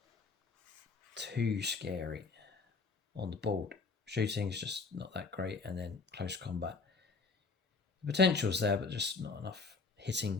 too scary on the board. Shooting is just not that great, and then close combat. The potential's there, but just not enough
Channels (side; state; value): right; quieter; 4.4 dB